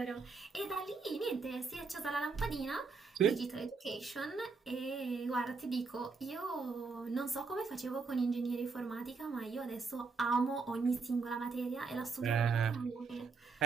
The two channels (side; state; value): left; quieter; 4.6 dB